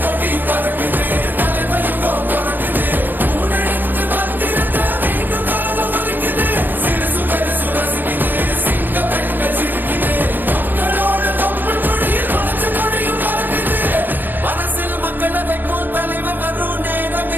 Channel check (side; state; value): left; late; 0.090 ms